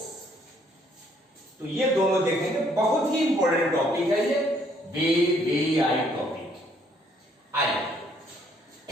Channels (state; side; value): normal; both; correlation 0.66